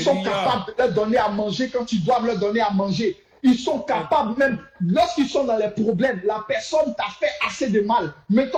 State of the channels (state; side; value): identical; both; correlation 1.00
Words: sont capables de leur donner à manger quand ils doivent leur donner à manger. Ils sont capables même, lorsqu'ils sont dans les problèmes, la personne t'a fait assez de mal, mais